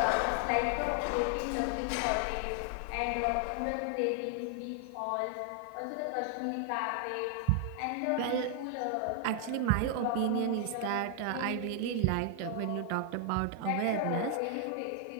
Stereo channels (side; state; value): both; different; correlation 0.00